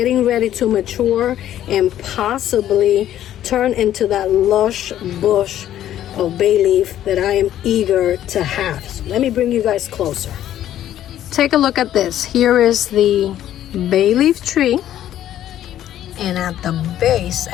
ready to mature and possibly turn into that lush bush of bay leaf that I am eager to have. So let me bring you guys closer. Take a look at this. Here is the bay leaf tree, and at the base,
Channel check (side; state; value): right; quieter; 11.9 dB